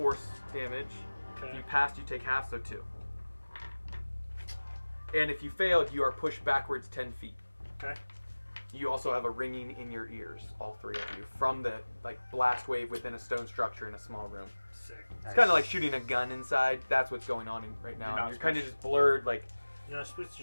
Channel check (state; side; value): inverted; both; correlation -1.00